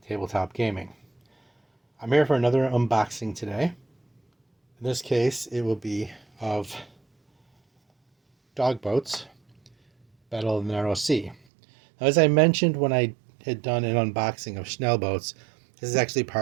Tabletop Gaming. I'm here for another unboxing today. In this case, it will be of Dog Boats, Battle of the Narrow Sea. Now, as I mentioned when I had done an unboxing of Schnell Boats, this is actually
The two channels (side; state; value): left; drops out; at 11.4 s